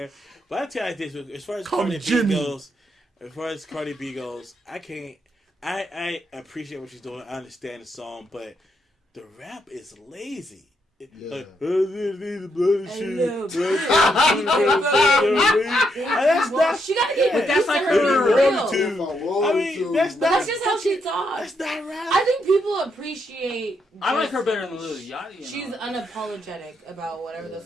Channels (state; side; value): normal; both; correlation 0.78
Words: But I tell you this: as far as Call me Cardi B Jimmy. goes, I can't. I appreciate what she's doing. I understand the song, but the rap is lazy. Yeah. Like, that's not. She gotta get But used that's to like her her being real real. If I mean, that's But not. that's just how she talks. That's not rap. I think people appreciate. I like just- her better than Lil Yachty. She's unapologetic about whatever the